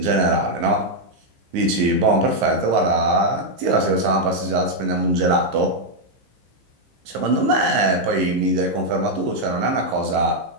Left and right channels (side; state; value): left; late; 15 ms